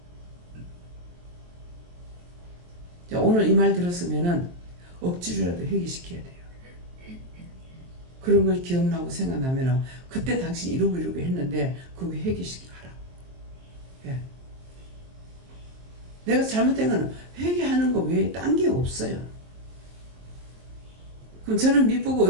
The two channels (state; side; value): late; left; 23 ms